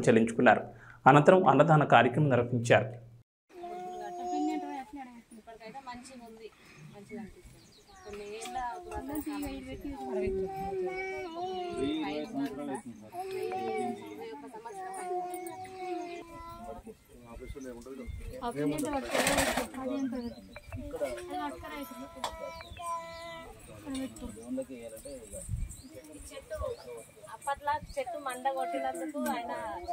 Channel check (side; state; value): both; identical; correlation 1.00